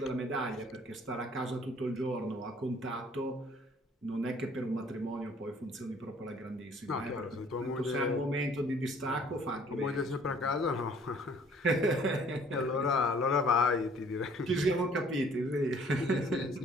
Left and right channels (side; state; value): both; normal; correlation 0.57